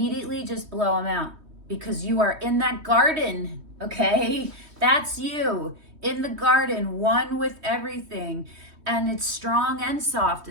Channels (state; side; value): late; left; 3.2 ms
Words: just blow them out because you are in that garden, okay? That's you in the garden, one with everything. And it's strong and soft